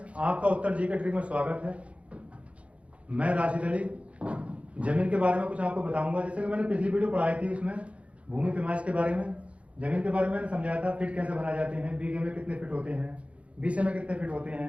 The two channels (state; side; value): late; left; 0.063 ms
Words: आपका उत्तर जी के ट्रिक में स्वागत है। मैं राशिद अली जमीन के बारे में कुछ आपको बताऊंगा। जैसे कि मैंने पिछली वीडियो पढ़ाई थी, उसमें भूमि पैमाइश के बारे में, जमीन के बारे में मैंने समझाया था। फिट कैसे बनाए जाते हैं, बीघे में कितने फिट होते हैं, बीसे में कितने फिट होते